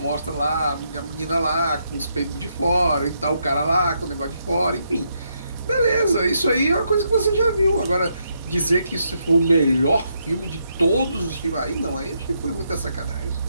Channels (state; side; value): inverted; both; correlation -0.78